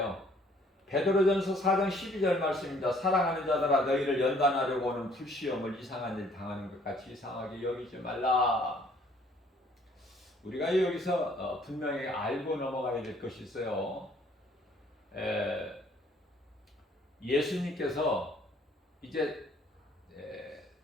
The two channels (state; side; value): normal; both; correlation 0.60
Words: 베드로전서 4장 12절 말씀입니다. 사랑하는 자들아 너희를 연단하려고 오는 불시험을 이상한 일 당하는 것 같이 이상하게 여기지 말라. 우리가 여기서 분명히 알고 넘어가야 될 것이 있어요. 예수님께서 이제